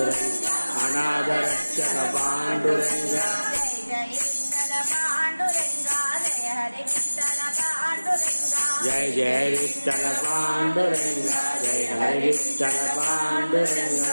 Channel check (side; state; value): both; inverted; correlation -1.00